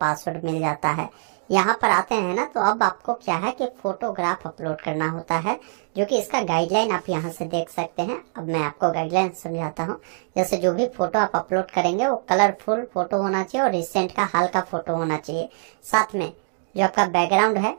मिल जाता है। यहाँ पर आते हैं ना तो अब आपको क्या है कि फोटोग्राफ अपलोड करना होता है, जो कि इसका गाइडलाइन आप यहाँ से देख सकते हैं। अब मैं आपको गाइडलाइन समझाता हूँ। जैसे जो भी फोटो आप अपलोड करेंगे वो कलरफुल फोटो होना चाहिए और रिसेंट का हाल का फोटो होना चाहिए। साथ में जो आपका बैकग्राउंड है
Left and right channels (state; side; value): silent; left; digital silence